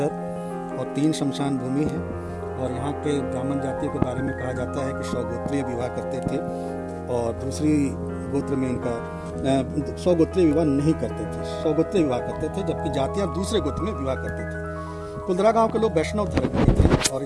और 3 शमशान भूमि है। और यहाँ के ब्राह्मण जातियों के बारे में कहा जाता है कि स्वगोत्रीय विवाह करते थे और दूसरी गोत्र में इनका स्वगोत्रीय विवाह नहीं करते थे, स्वगोत्रीय विवाह करते थे, जबकि जातियाँ दूसरे गोत्र में विवाह करते थे। कुलधरा गांव के लोग वैष्णव धर्म के थे और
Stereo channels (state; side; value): identical; both; correlation 1.00